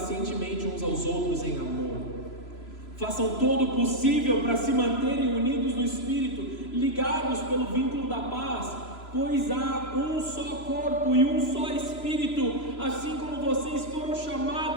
uns aos outros em amor. Façam todo o possível para se manterem unidos no Espírito, ligados pelo vínculo da paz, pois há um só corpo e um só Espírito, assim como vocês foram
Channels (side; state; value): right; late; 3.0 ms